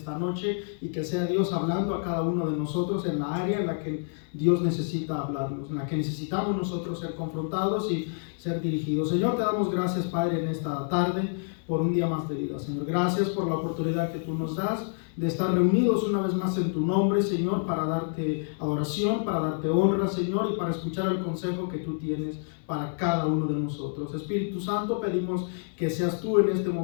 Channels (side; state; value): right; silent; digital silence